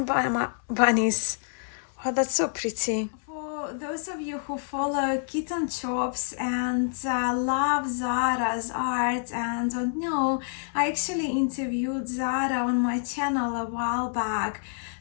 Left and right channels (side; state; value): right; silent; 60 dB below the other